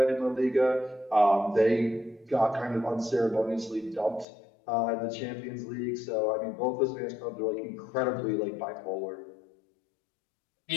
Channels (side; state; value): right; drops out; at 4.2 s